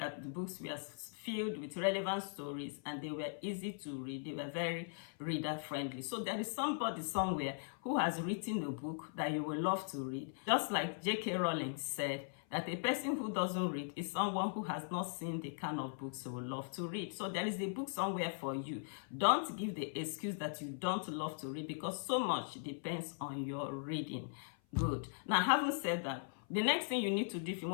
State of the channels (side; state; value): right; silent; 51 dB below the other